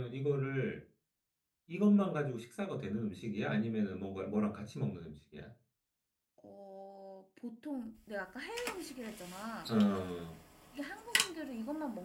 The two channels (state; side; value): identical; both; correlation 1.00